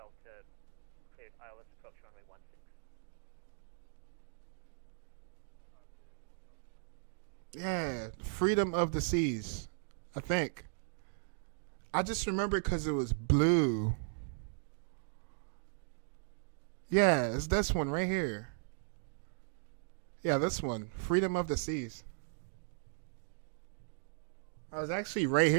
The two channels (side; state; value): left; silent; digital silence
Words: cleared ILS approach runway 16. Yeah, Freedom of the Seas, I think. I just remember because it was blue. Yeah, it's this one right here. Yeah, this one, Freedom of the Seas. I was actually right